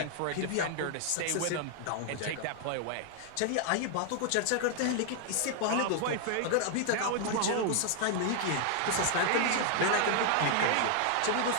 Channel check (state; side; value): different; both; correlation 0.00